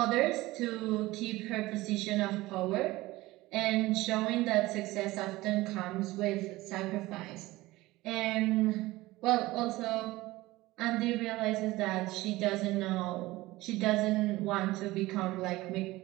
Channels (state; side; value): quieter; left; 18.9 dB